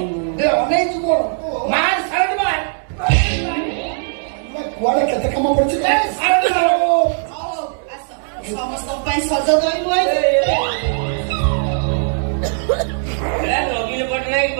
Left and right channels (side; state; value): left; silent; digital silence